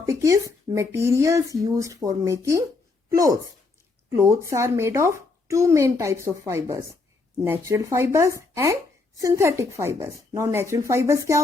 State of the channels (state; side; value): quieter; right; 3.8 dB